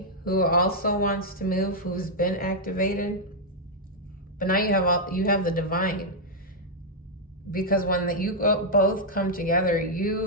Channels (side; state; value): both; normal; correlation -0.04